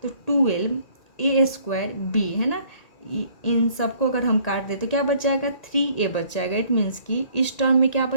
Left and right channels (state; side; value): late; right; 1.8 ms